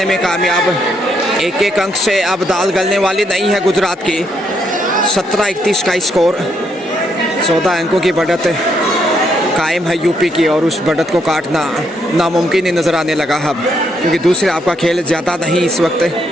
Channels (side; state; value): both; normal; correlation 0.75